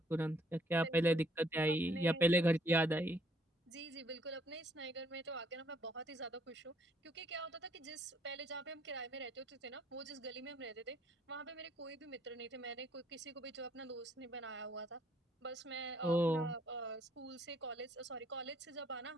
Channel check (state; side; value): normal; both; correlation 0.66